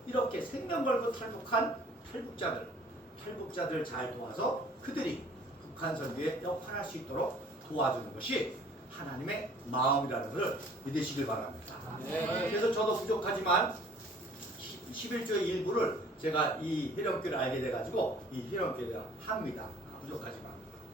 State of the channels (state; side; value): normal; both; correlation 0.54